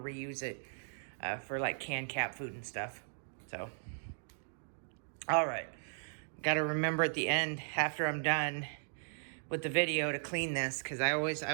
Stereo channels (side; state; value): left; silent; digital silence